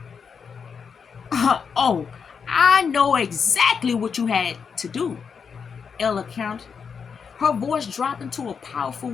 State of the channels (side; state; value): right; quieter; 6.2 dB